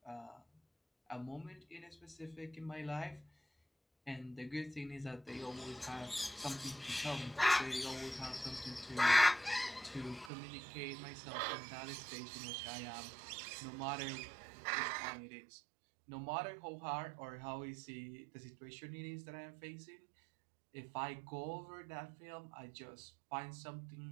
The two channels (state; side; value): drops out; left; at 10.3 s